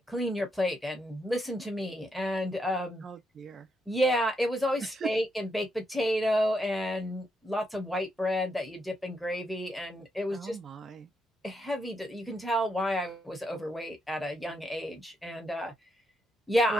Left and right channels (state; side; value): normal; both; correlation 0.80